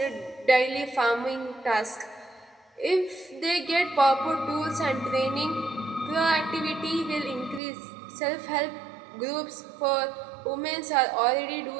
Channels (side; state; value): left; drops out; at 7.6 s